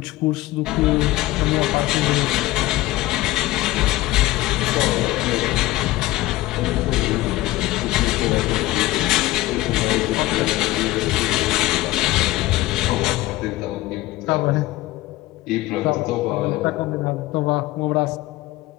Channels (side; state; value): right; quieter; 17.7 dB